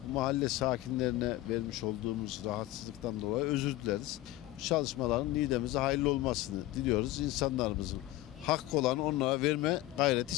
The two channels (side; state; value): right; quieter; 16.5 dB